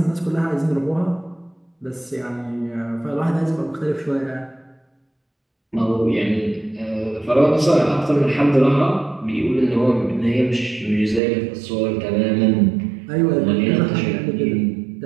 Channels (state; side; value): drops out; left; at 11.2 s